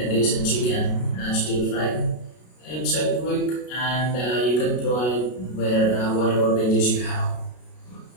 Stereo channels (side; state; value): right; late; 32 ms